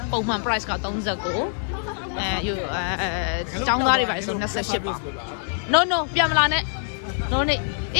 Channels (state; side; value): silent; right; 62 dB below the other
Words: ပုံမှန် price က39ကျောင်းသားတွေပါဆို28ပေါင် no ပြန်မလာနဲ့ no need